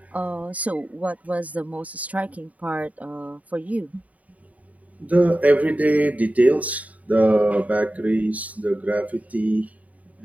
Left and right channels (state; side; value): late; left; 0.071 ms